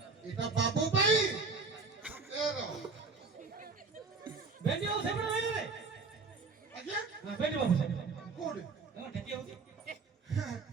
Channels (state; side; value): quieter; left; 4.3 dB